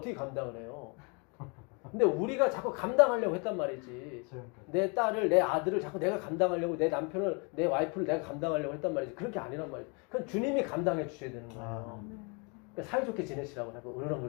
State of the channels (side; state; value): right; quieter; 33.4 dB